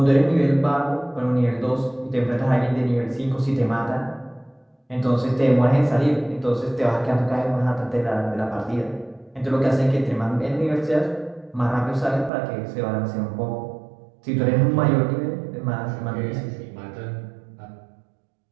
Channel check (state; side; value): drops out; left; at 12.3 s